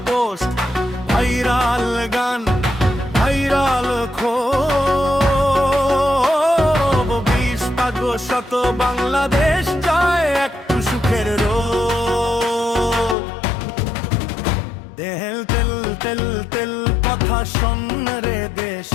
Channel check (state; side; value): drops out; right; at 13.2 s